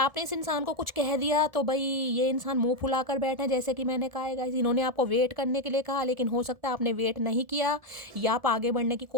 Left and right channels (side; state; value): left; late; 1.7 ms